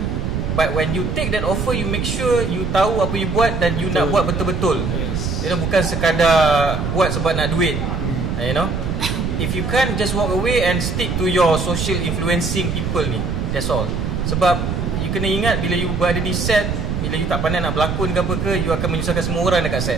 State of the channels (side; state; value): right; noise; rumble, 1 dB below the sound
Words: But when you take that offer, you make sure you tahu apa you buat dan you nak buat betul-betul. You know, bukan sekadar buat sebab nak duit. You know, if you can't just walk away and stick to your social influencing people ni, that's all. Sebab you kena ingat, bila you berada di set, bila you tak pandai nak berlakon ke apa ke, you akan menyusahkan semua orang dekat